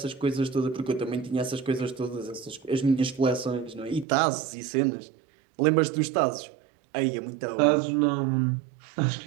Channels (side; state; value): left; drops out; at 4.0 s